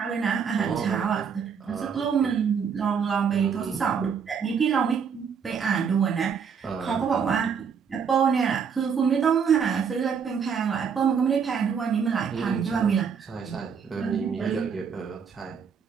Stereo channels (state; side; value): quieter; left; 6.6 dB